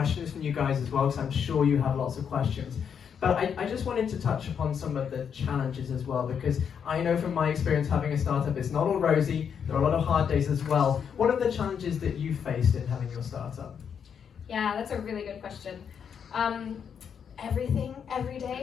from you guys as well, because I'm sure you have lots of questions. But I just wanted to touch upon some of the challenges as well, because I know from my experience having a startup, it's not all rosy. There are a lot of hard days as well. What are the challenges that you faced in having your startup? Yeah, that's a really good question. Everything, every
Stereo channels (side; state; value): right; quieter; 7.4 dB